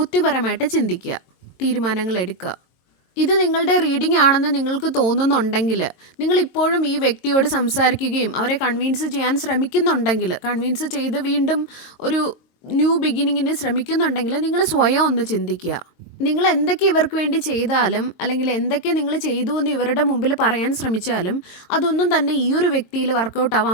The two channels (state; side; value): late; right; 22 ms